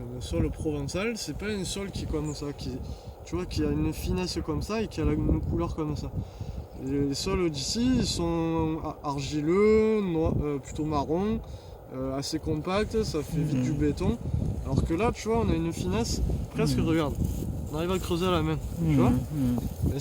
le sol provençal, c'est pas un sol qui est comme ça, tu vois, qui a une finesse comme ça et qui a une couleur comme ça. Les sols d'ici, ils sont argileux, plutôt marron, assez compacts, ça fait vite du béton. Alors que là, tu vois, on a une finesse presque, regarde, on arrive à creuser à la main, tu vois. Et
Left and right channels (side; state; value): both; identical; correlation 1.00